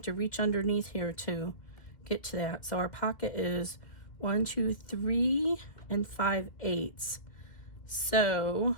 to reach underneath here to get to that. So our pocket is 1, 2, 3, and 5/8. So,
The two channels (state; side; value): late; right; 2.0 ms